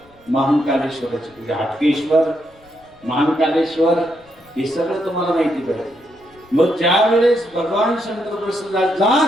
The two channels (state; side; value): noise; left; rumble, 29 dB below the sound